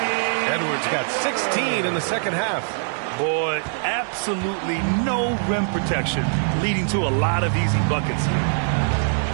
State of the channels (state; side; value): silent; left; digital silence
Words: Edwards got 16 in the second half. Boy, absolutely no rim protection, leading to a lot of easy buckets.